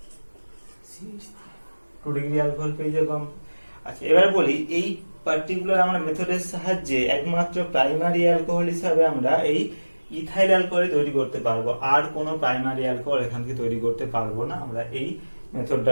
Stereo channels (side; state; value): both; inverted; correlation -1.00